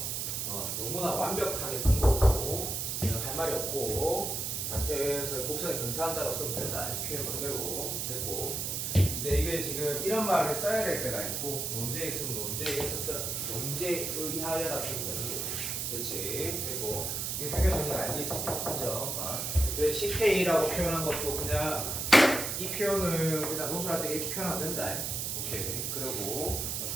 너무나 완벽하게 쓴 거고 그냥 할 말이 없고, 다시 해서 곡선에 근사한다고 쓰면 된다. 표현 그대로 됐고, 이제 이게 지금 이런 말을 써야 될 때가 있고, 논제에 있으면 논제에 의하여라 쓰면 되는 거고. 그렇지. 그리고 이게 상계 정리가 알겠지, 인정. 그래 CK라고 표현한 것도 그냥 이 표현을 그냥 논술할 때 이렇게 표현하면 된다. 오케이. 그리고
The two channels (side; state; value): right; noise; hiss, 2 dB below the sound